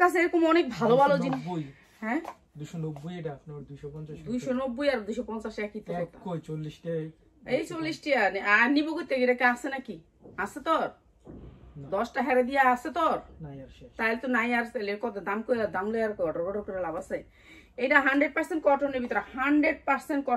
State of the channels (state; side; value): identical; both; correlation 1.00